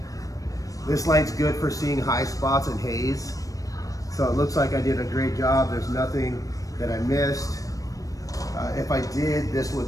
This light's good for seeing high spots and haze. So it looks like I did a great job. There's nothing that I missed. If I did, this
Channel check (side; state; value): right; late; 0.16 ms